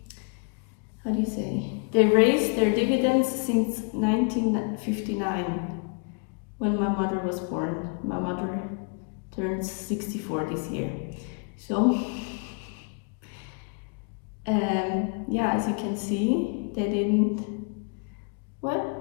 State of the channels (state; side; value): quieter; right; 37.1 dB